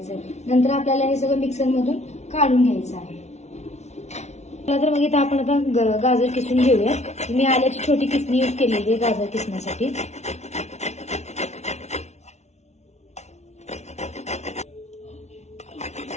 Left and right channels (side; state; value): right; late; 0.32 ms